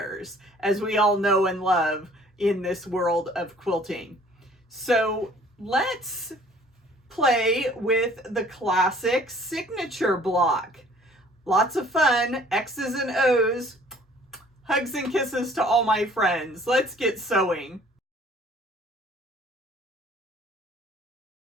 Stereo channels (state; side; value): normal; both; correlation 0.55